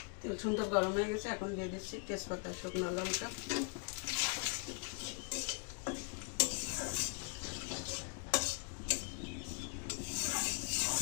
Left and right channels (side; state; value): right; quieter; 37.6 dB